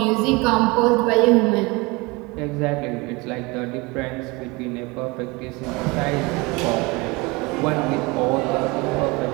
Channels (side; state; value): left; quieter; 25.2 dB